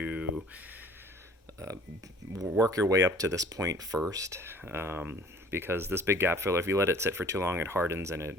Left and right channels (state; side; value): normal; both; correlation 0.50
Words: work your way up to this point first, because this big gap filler, if you let it sit for too long, it hardens, and